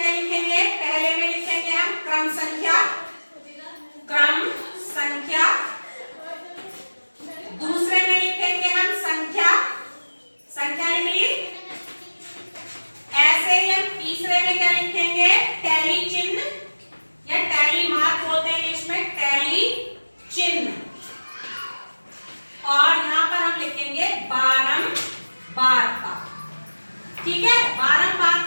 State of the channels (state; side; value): inverted; both; correlation -1.00